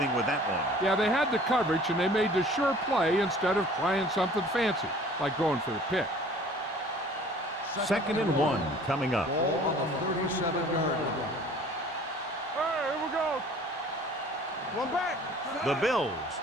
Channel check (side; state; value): both; normal; correlation 0.50